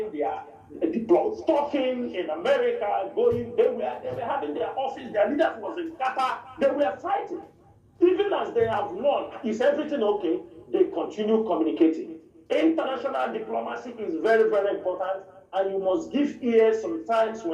their deploys, talking in America, going, they were having their office, their leaders was in Qatar, they were fighting. Even as they have won, is everything okay? They continue communicating. International diplomacy is very, very important, and you must give ear sometimes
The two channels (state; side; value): identical; both; correlation 1.00